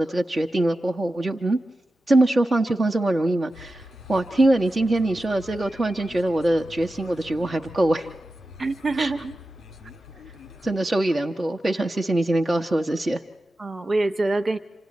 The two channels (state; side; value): normal; both; correlation 0.93